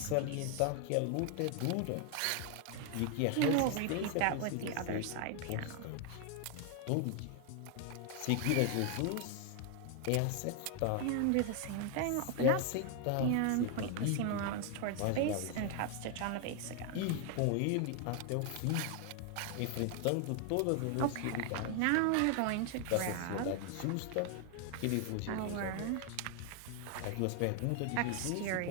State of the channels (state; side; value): different; both; correlation 0.01